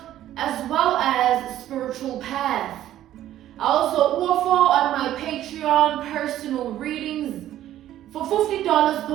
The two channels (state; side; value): quieter; left; 12.6 dB